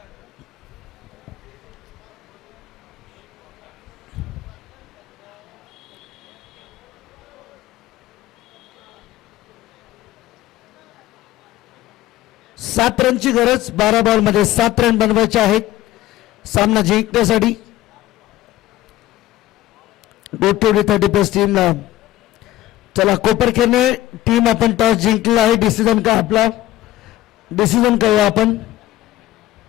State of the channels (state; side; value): quieter; right; 14.8 dB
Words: सात रनची गरज. 12 बॉल मध्ये 7 रन बनवायचे आहेत सामना जिंकण्यासाठी. गोटीवडी 30+ टीमला. चला कोपरखेरणे टीम आपण टॉस जिंकलेला आहे. डिसिजन का आपला डिसिजन करूया आपण.